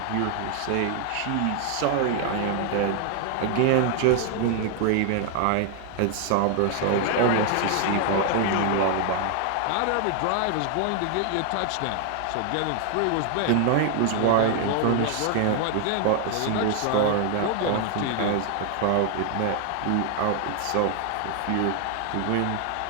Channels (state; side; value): different; both; correlation 0.00